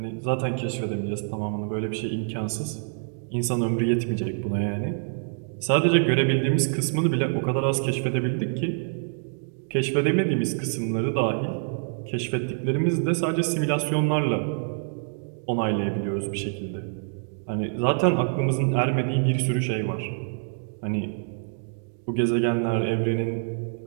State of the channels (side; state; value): left; silent; 61 dB below the other